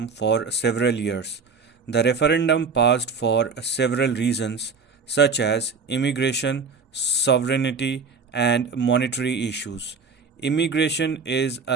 for several years. The referendum passed for several reasons, such as immigration, sovereignty, and monetary issues. Immigration is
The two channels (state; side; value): quieter; left; 4.9 dB